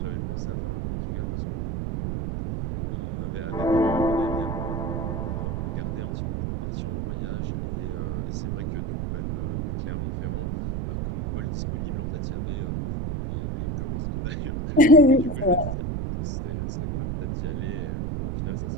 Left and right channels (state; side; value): noise; right; rumble, 2 dB below the sound